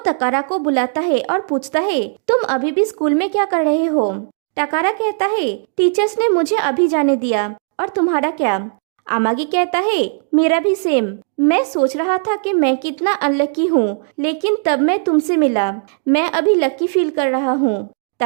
को बुलाता है और पूछता है, तुम अभी भी स्कूल में क्या कर रहे हो? तकारा कहता है, टीचर्स ने मुझे अभी जाने दिया। और तुम्हारा क्या? अमागी कहता है, मेरा भी सेम। मैं सोच रहा था कि मैं कितना अनलकी हूँ, लेकिन तब मैं तुमसे मिला। मैं अभी लकी फील कर रहा हूँ।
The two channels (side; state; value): left; silent; 68 dB below the other